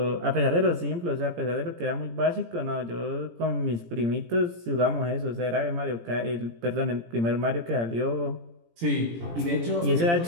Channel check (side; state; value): left; late; 17 ms